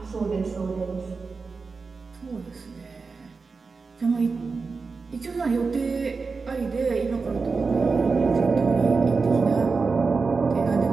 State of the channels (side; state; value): left; quieter; 4.5 dB